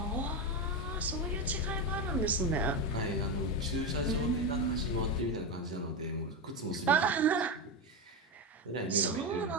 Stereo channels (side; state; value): both; normal; correlation 0.13